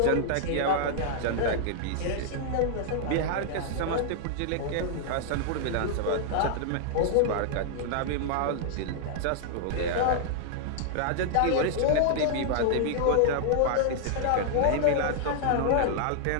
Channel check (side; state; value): both; different; correlation -0.01